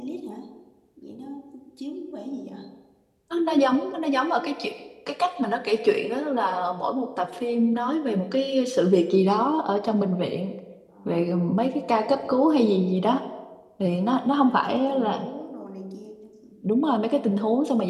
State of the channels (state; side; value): identical; both; correlation 1.00